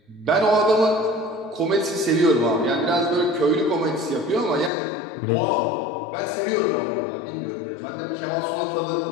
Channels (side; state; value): right; drops out; at 4.7 s